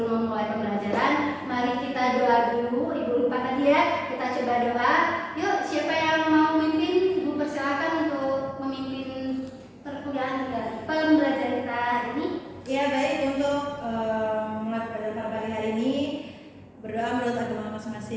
memulai pembelajaran, mari kita doa dulu. Ibu lupa tadi ya, kita coba doa. Yuk, siapa yang mau memimpin? Ibu persilakan untuk memimpin perkuliahan kita, pembelajaran kita hari ini. Ya baik, untuk mulai pada pagi hari ini berdoa menurut agama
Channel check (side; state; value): both; identical; correlation 1.00